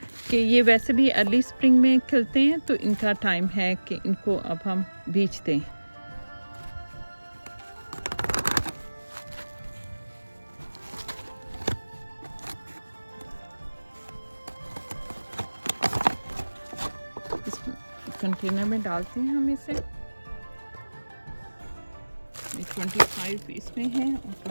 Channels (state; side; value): inverted; both; correlation -1.00